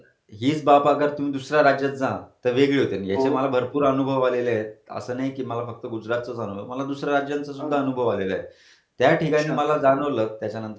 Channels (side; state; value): both; identical; correlation 1.00